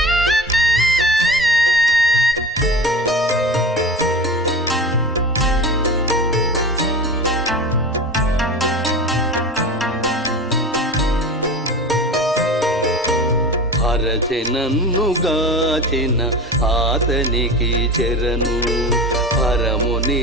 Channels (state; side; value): normal; both; correlation 0.32